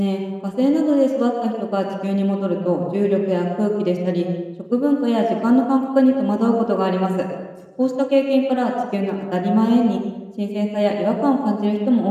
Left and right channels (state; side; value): identical; both; correlation 1.00